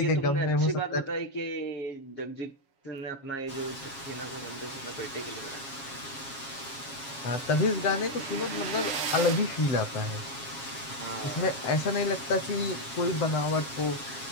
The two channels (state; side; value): late; right; 7.3 ms